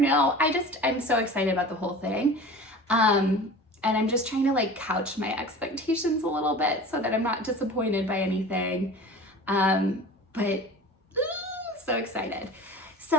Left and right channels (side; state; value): both; normal; correlation 0.38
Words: know, I'm so excited about the whole thing. And I'm just trying to like couch my expectations a little bit so that I'm not disappointed by anything. But so excited. So